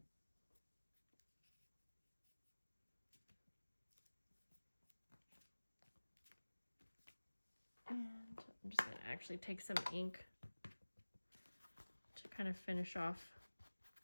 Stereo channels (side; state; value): both; inverted; correlation -1.00